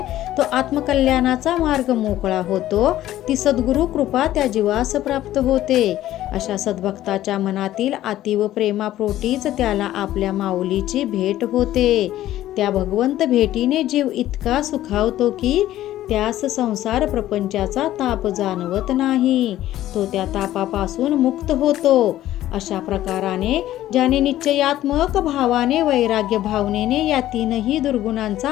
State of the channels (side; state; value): right; quieter; 13.8 dB